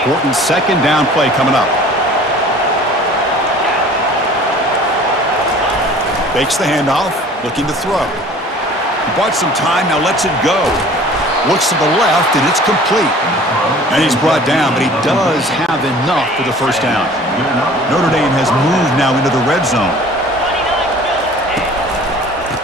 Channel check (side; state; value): both; normal; correlation 0.47